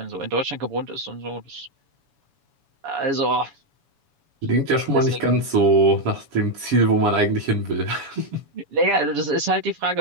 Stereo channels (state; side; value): late; left; 7.1 ms